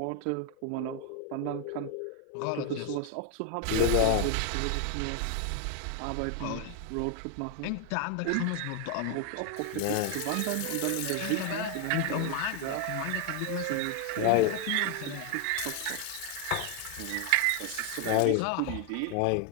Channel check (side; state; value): both; different; correlation 0.01